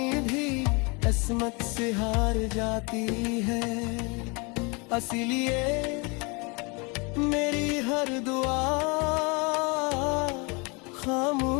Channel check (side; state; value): right; quieter; 30.2 dB